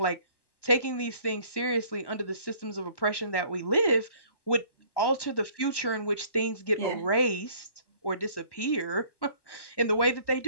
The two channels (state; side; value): late; right; 1.1 ms